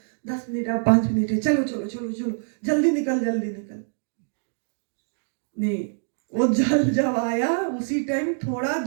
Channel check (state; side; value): silent; left; digital silence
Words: 10 मिनट, 5 मिनट है, चलो जल्दी निकल। नहीं, वो जल जब आया उसी टाइम, थोड़ा